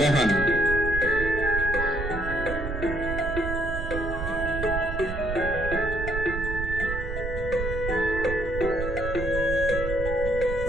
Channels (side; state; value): right; noise; rumble, 5 dB below the sound